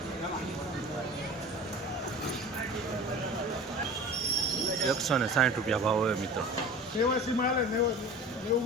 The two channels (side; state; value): both; normal; correlation 0.38